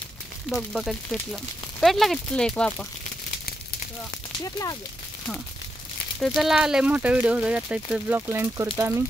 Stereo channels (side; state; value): both; normal; correlation 0.84